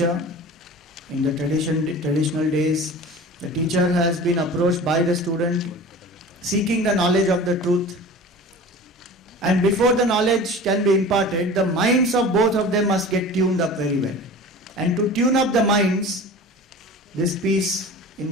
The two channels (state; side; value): normal; both; correlation 0.38